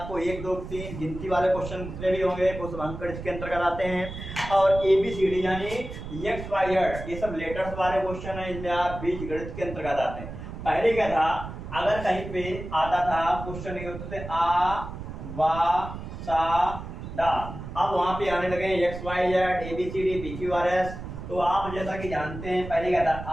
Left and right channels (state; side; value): noise; right; rumble, 10 dB below the sound